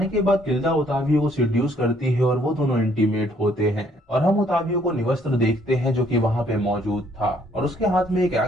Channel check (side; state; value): both; normal; correlation 0.65